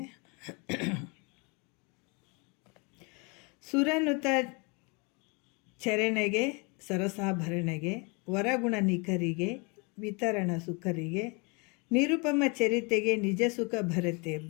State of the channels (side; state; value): right; quieter; 30.5 dB